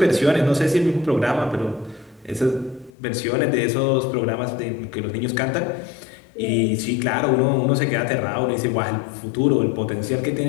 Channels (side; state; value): right; drops out; at 2.9 s